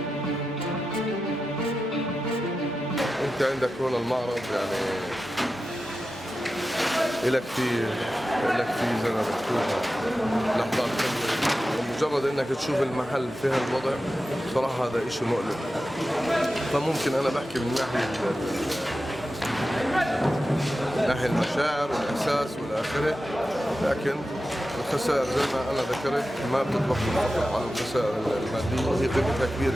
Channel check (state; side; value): normal; both; correlation 0.92